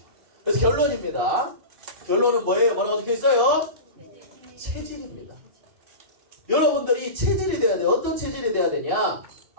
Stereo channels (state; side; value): late; left; 2.6 ms